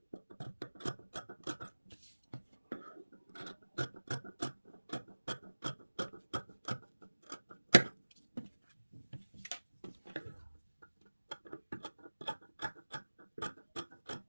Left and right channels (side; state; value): both; inverted; correlation -1.00